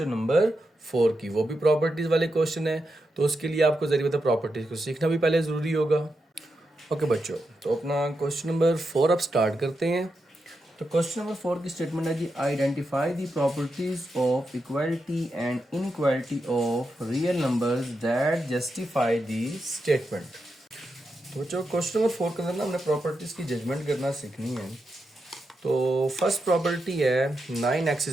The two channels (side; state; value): both; normal; correlation 0.86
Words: नंबर 4 की, वो भी प्रॉपर्टीज़ वाले क्वेश्चन है, तो उसके लिए आपको जरिए बता प्रॉपर्टीज़ को सीखना भी पहले ज़रूरी होगा। ओके बच्चों, तो अपना क्वेश्चन नंबर 4 अब स्टार्ट करते हैं। तो क्वेश्चन नंबर 4 की स्टेटमेंट है जी, identify the properties of equality and inequality of real numbers that justify the statement. तो बच्चों क्वेश्चन नंबर 4 के अंदर ना हमने प्रॉपर्टीज़ की जजमेंट करना सीखनी है। तो फर्स्ट प्रॉपर्टी है 9x